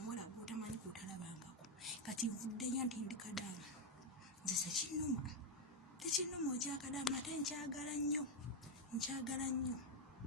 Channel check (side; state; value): both; normal; correlation 0.04